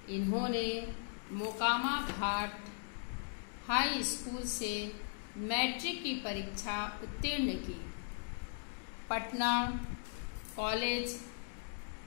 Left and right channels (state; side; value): silent; right; digital silence